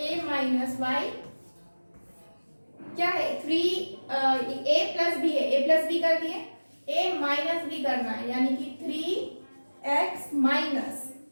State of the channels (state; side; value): inverted; both; correlation -1.00